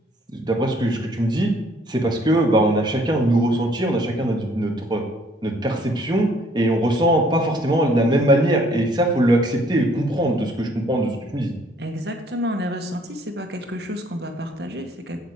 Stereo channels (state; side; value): normal; both; correlation 0.61